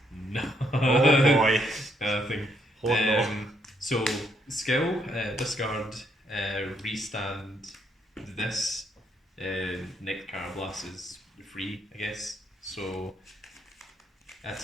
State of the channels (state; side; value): normal; both; correlation 0.73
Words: no. Oh boy. Nothing. Hold on. So skill, discard, restand this. Nick Carablast is free, I guess. So